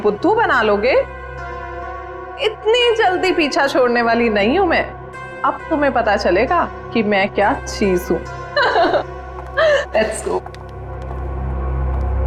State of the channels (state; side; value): identical; both; correlation 1.00